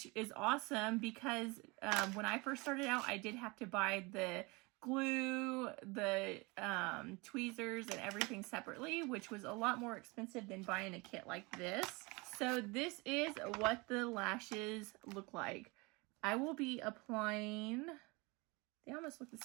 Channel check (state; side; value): quieter; left; 26.3 dB